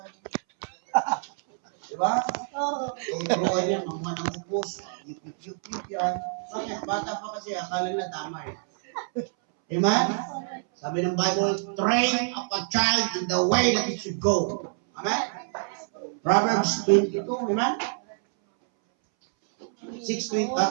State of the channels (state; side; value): silent; left; 60 dB below the other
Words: Diba? Tuturuan yan, mga upos, yup yan. Bakit? Bata pa kasi, akala na tama eh. Amen? Sabi ng Bible, train up a child in the way that it should go. Amen? Proverbs 22, amen? 6:20,